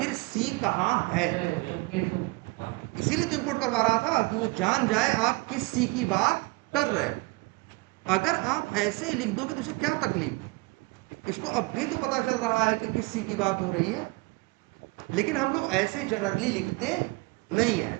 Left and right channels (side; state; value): left; quieter; 24.0 dB